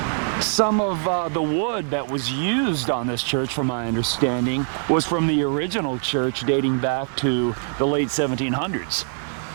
some of the wood that was used on this church, from my understanding, was from the original church dating back to the late 1700s.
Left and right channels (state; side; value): silent; left; 63 dB below the other